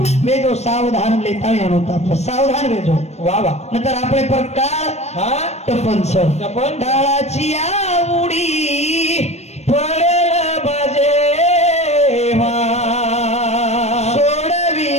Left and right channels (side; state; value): right; late; 0.32 ms